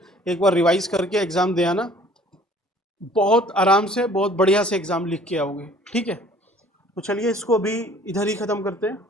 एक बार रिवाइज करके एग्ज़ाम दे आना, बहुत आराम से बहुत बढ़िया से एग्ज़ाम लिख के आओगे, ठीक है। तो चलिए इसको अभी इधर ही ख़त्म करते हैं,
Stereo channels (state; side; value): normal; both; correlation 0.54